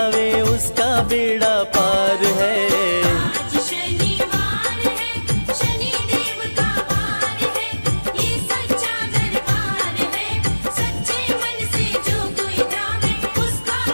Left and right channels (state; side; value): inverted; both; correlation -1.00